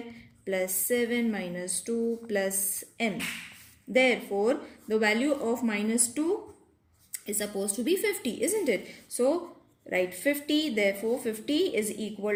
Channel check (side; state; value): both; identical; correlation 1.00